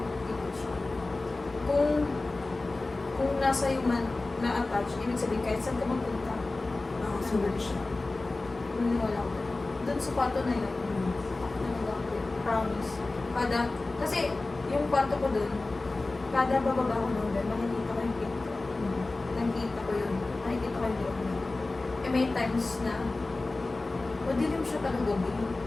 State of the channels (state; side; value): quieter; right; 3.2 dB